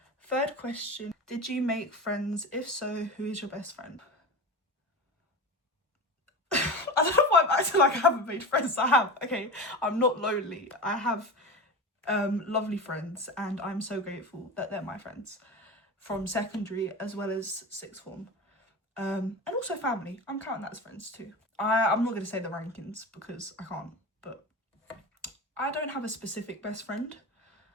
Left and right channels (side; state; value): both; normal; correlation 0.27